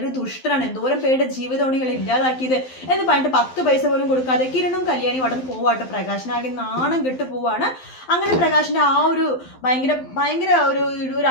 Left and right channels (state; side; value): late; right; 12 ms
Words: ദുഷ്ടനാണ്, എന്തോരം പേരുടെ ജീവിതമാണ് ഇയാൾ ഇല്ലാതാക്കിയത് എന്ന് പറഞ്ഞിട്ട് 10 പൈസ പോലും കൊടുക്കാതെ കിരണും കല്യാണിയും അവിടെ നിന്ന് പോവാട്ടോ. പ്രകാശനാകെ നാണം കെട്ട് പോവാണ്. അങ്ങനെ പ്രകാശിന്റെ ആ ഒരു ഭയങ്കര ഒരു